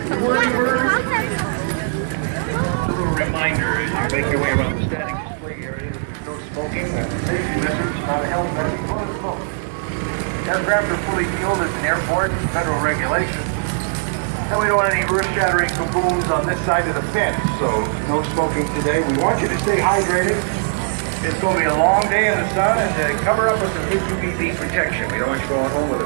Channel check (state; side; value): silent; left; digital silence